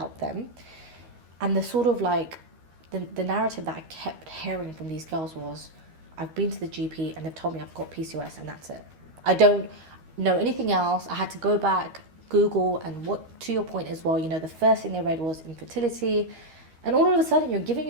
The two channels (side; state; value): left; late; 13 ms